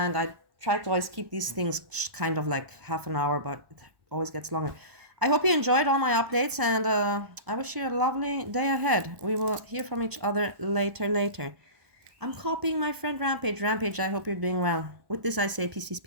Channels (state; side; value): late; left; 1.2 ms